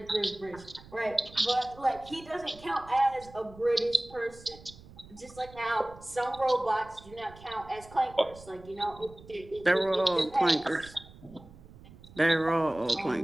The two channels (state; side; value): noise; right; rumble, 20 dB below the sound